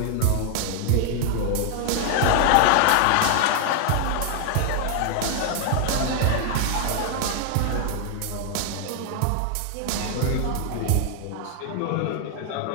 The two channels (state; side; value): different; both; correlation 0.00